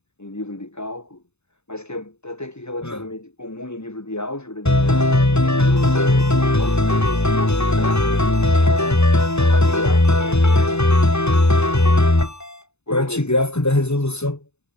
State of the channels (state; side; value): late; right; 0.81 ms